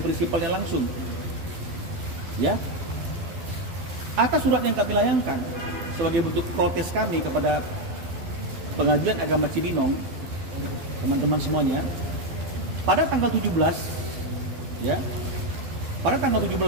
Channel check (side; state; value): left; late; 12 ms